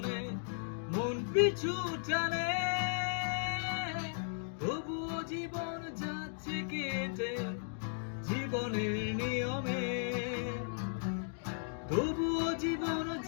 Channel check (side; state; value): right; silent; digital silence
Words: মন পিছু টানে, তবুও জীবন যাচ্ছে কেটে জীবনের নিয়মে, তবুও জীবন